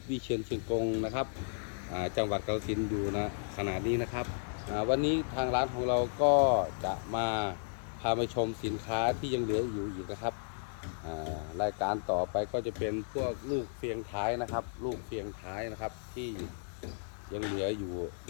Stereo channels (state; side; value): silent; right; digital silence